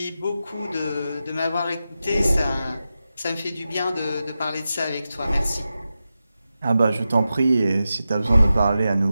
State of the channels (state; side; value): inverted; both; correlation -0.91